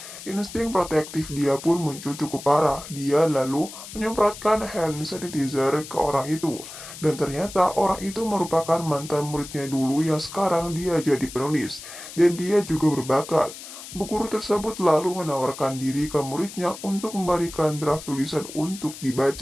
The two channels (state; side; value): noise; left; hiss, 13 dB below the sound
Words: Insting protektif dia pun muncul cukup parah. Dia lalu menyemprotkan hand sanitizer ke orang itu. Dan ternyata orang itu merupakan mantan muridnya dulu yang sekarang dia jadi penulis. Dan dia juga berbakat. Bu guru tersebut lalu menawarkan diri ke muridnya untuk memberikan draft tulisan untuk